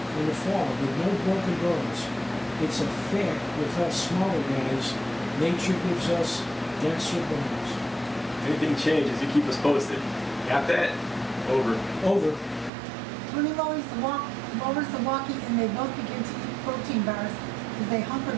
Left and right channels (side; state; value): left; drops out; at 12.7 s